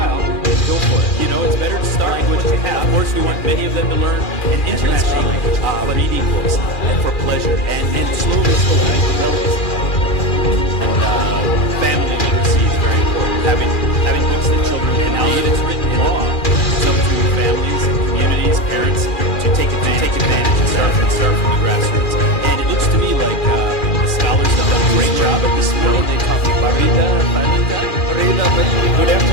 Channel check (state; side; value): late; right; 2.4 ms